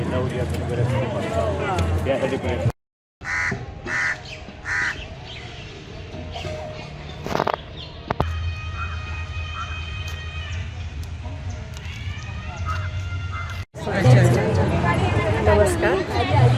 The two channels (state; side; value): identical; both; correlation 1.00